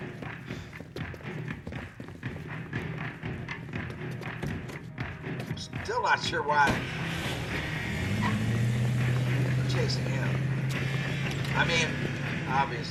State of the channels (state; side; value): identical; both; correlation 1.00